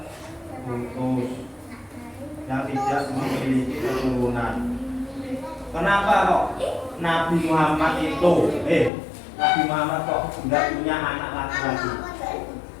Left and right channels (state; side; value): drops out; right; at 8.9 s